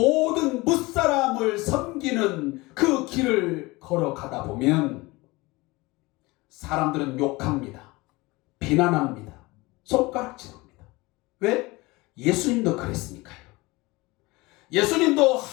무사람을 섬기는 그 길을 걸어가다 보면 사람들은 욕합니다. 비난합니다. 손가락질합니다. 왜? 예수님도 그랬으니까요. 예수님도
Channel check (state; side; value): quieter; right; 22.5 dB